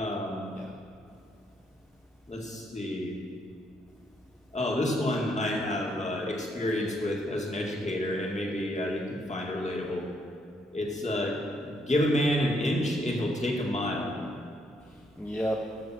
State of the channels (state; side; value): normal; both; correlation 0.73